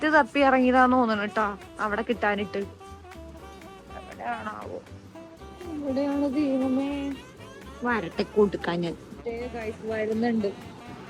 തപ്പി ഇറങ്ങിയതാന്ന് തോന്നണം കേട്ടാ അവിടെ കിട്ടാനിട്ട്. എവിടെയാണാവോ? എവിടെയാണ് ദൈവമേ? വരട്ടെ കൊടുക്കാൻ ഞാൻ വരുന്നുണ്ട്.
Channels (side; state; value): both; identical; correlation 1.00